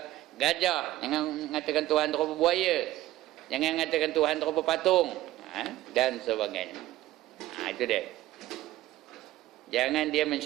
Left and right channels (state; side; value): quieter; left; 15.4 dB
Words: gajah, jangan katakan Tuhan tu rupa buaya, jangan katakan Tuhan tu rupa patung, dan sebagainya. Itu dia. Jangan dia